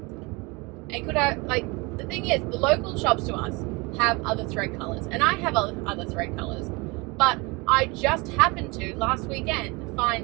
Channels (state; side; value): quieter; left; 26.6 dB